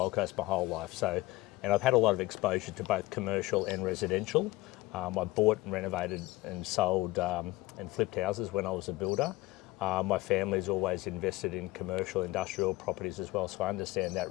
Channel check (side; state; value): right; quieter; 19.5 dB